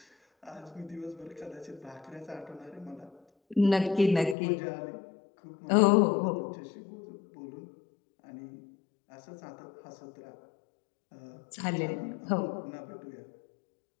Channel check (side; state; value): right; drops out; at 4.4 s